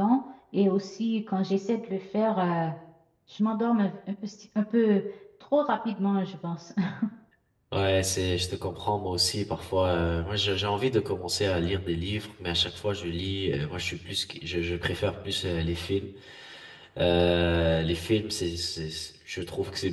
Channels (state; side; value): identical; both; correlation 1.00